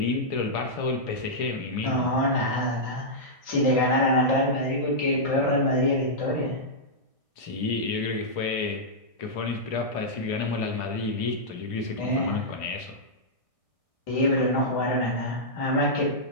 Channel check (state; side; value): late; right; 1.6 ms